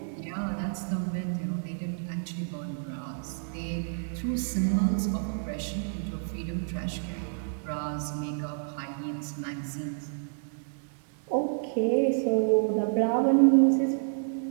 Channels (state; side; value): silent; left; 58 dB below the other